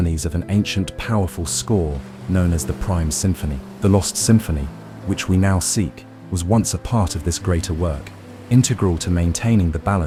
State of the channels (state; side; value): identical; both; correlation 1.00